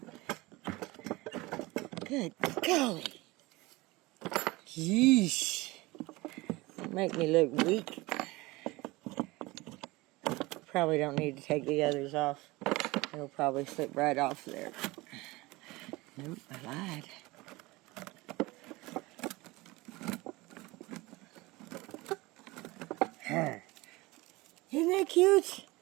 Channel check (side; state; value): left; quieter; 21.7 dB